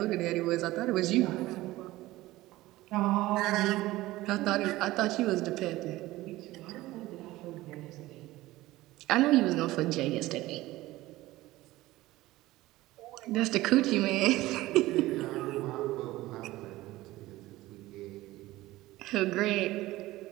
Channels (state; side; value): quieter; left; 17.7 dB